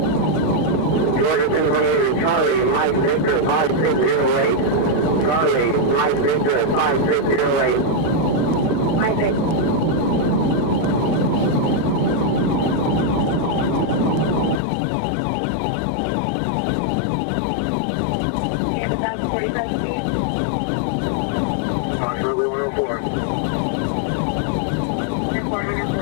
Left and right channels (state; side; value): drops out; right; at 14.6 s